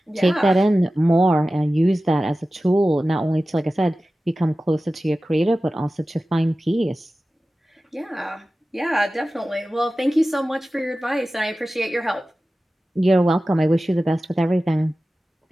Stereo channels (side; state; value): both; normal; correlation 0.95